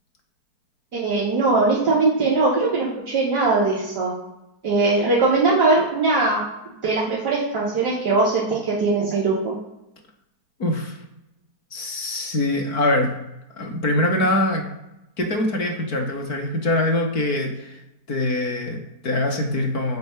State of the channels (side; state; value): right; late; 4.5 ms